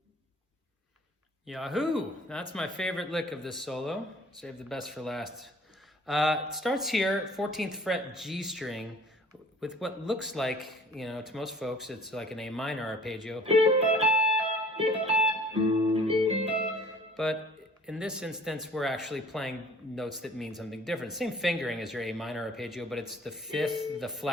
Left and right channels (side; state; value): both; normal; correlation 0.51